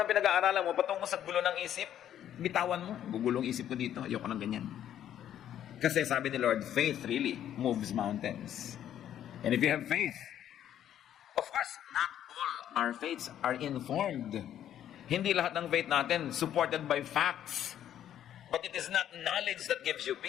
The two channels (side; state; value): right; quieter; 10.7 dB